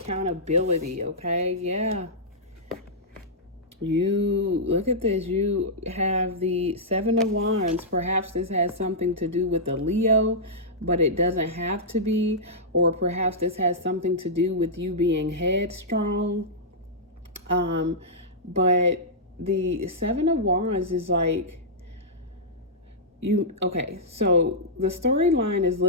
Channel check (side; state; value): both; normal; correlation -0.11